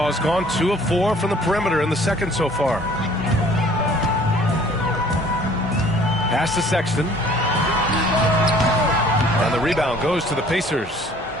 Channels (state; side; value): normal; both; correlation 0.54